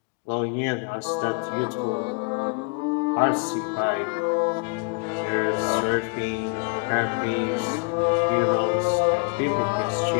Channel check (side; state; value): right; quieter; 33.5 dB